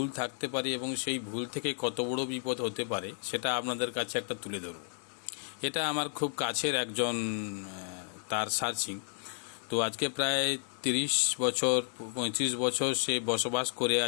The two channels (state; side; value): silent; right; 56 dB below the other